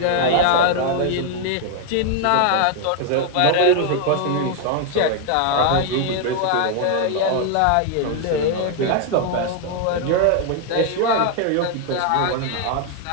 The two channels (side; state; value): both; different; correlation 0.00